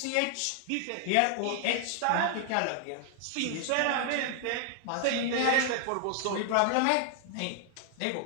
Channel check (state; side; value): different; both; correlation 0.00